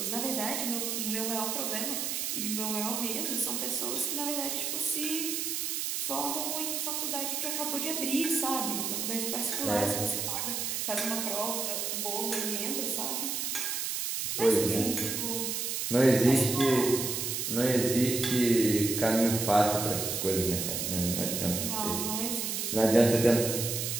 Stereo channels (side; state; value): right; noise; hiss, 1 dB below the sound